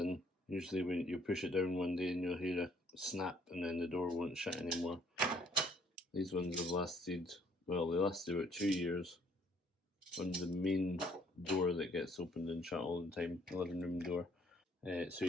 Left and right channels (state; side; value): normal; both; correlation 0.63